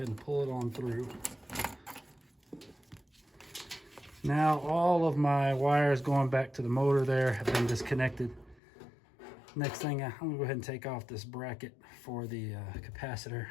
and pull it on through. Now all of my wires going back to the motor there have been disconnected. Next thing, I'm gonna go ahead and take off this bracket for the capacitor.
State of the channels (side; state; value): right; drops out; at 8.6 s